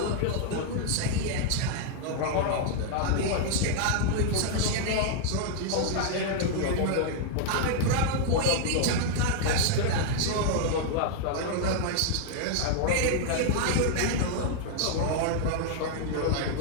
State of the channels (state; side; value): different; both; correlation -0.01